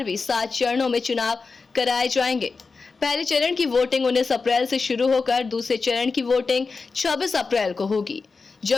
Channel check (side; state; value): right; quieter; 4.4 dB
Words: भी 7 चरणों में चुनाव कराए जाएंगे। पहले चरण की वोटिंग 19 अप्रैल से शुरू होकर दूसरे चरण की वोटिंग 26 अप्रैल को होगी,